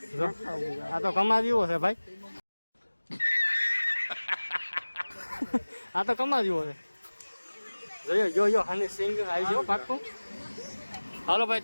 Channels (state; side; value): inverted; both; correlation -1.00